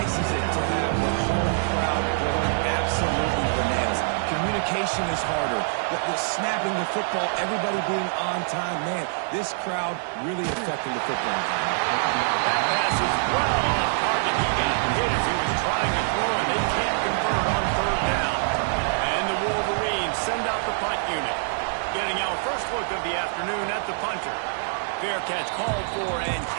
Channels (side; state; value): left; silent; digital silence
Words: is it to have the home crowd going absolutely bananas? Communication is harder. The snapping the football, everybody being on time. Man, this crowd really affecting the football. That pass is well off target. He got hit as he was trying to throw, and they can't convert on 3rd down. And the Wolverines send out the punt unit. Getting our first look of the afternoon at the punter. Fair catch called for and